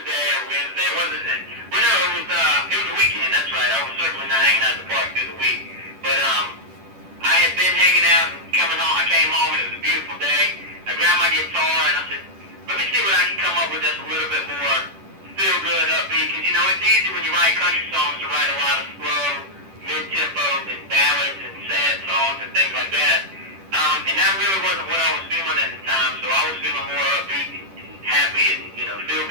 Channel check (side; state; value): left; late; 10 ms